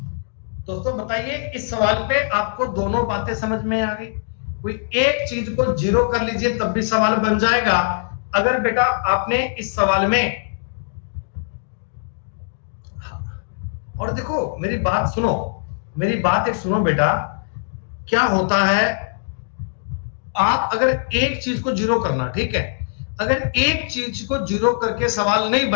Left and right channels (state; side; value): silent; right; digital silence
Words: दोस्तों बताइए इस सवाल पे आपको दोनों बातें समझ में आ गई? कोई एक चीज को 0 कर लीजिए तब भी सवाल बन जाएगा। अगर बेटा आपने इस सवाल में, और देखो मेरी बात सुनो, मेरी बात एक सुनो बेटा, क्या होता है, आप अगर एक चीज को 0 करना, ठीक है, अगर एक चीज को 0 करके सवाल नहीं